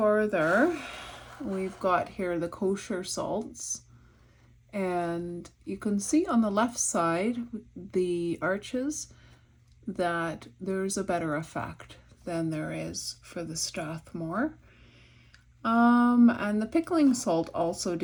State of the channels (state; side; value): identical; both; correlation 1.00